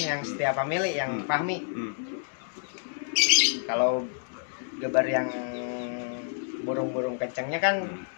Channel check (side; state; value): right; silent; digital silence